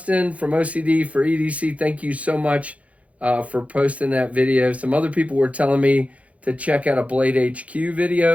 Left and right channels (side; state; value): left; late; 0.066 ms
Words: from OCD for EDC, thank you so much for posting that video. Some other people were telling me to check out a Blade HQ